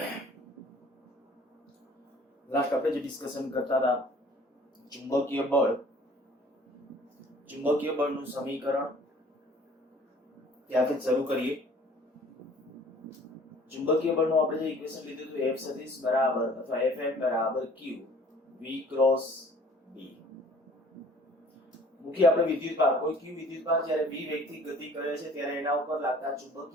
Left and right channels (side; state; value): both; normal; correlation 0.52